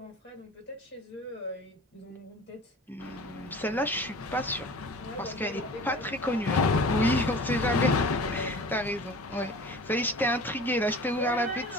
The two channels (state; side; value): normal; both; correlation 0.41